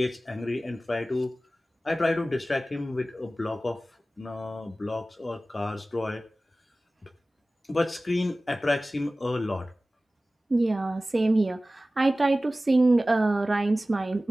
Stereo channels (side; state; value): both; normal; correlation 0.97